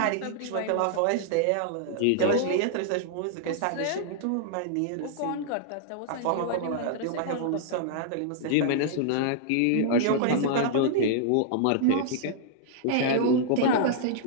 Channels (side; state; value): both; different; correlation -0.01